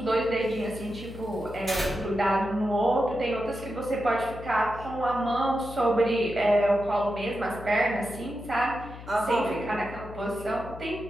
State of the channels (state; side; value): noise; left; hum, 14 dB below the sound